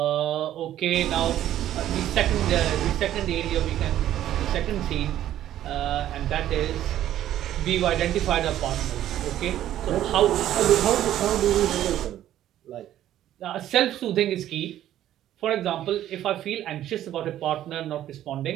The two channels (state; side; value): quieter; left; 12.3 dB